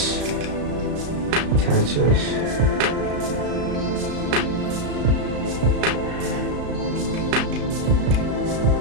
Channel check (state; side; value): late; left; 34 ms